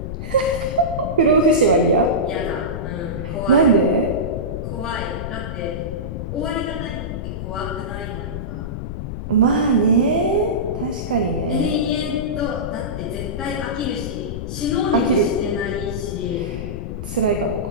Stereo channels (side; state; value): left; noise; rumble, 6 dB below the sound